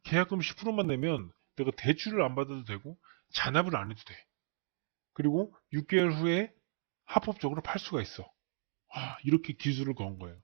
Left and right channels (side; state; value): left; silent; digital silence